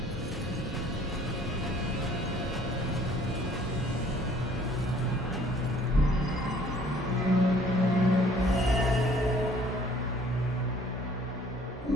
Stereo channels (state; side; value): normal; both; correlation 0.57